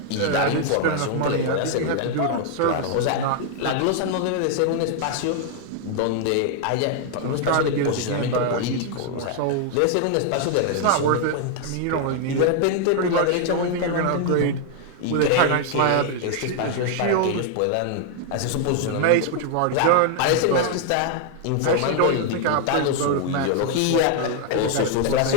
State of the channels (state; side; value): different; both; correlation 0.00